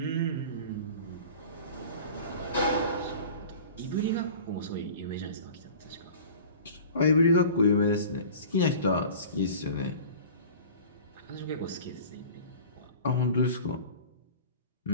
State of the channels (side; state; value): both; inverted; correlation -0.41